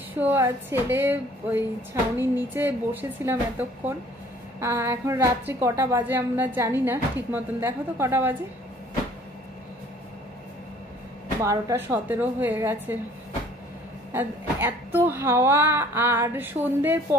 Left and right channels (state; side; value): normal; both; correlation 0.55